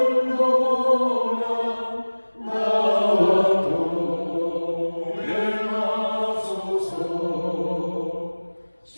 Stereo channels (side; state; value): both; inverted; correlation -1.00